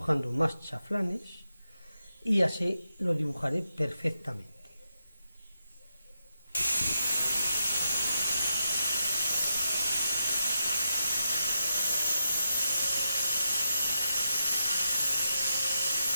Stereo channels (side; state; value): both; inverted; correlation -0.86